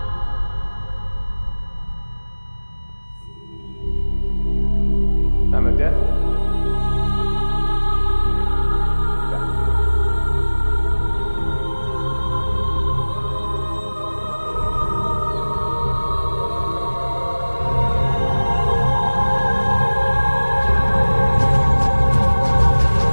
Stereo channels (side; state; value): both; inverted; correlation -1.00